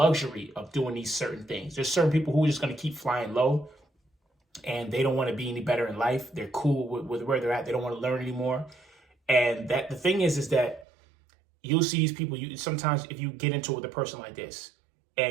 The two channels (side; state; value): left; drops out; at 10.9 s